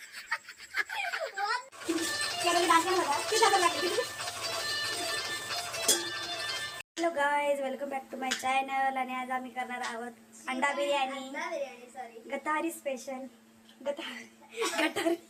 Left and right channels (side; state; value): both; identical; correlation 1.00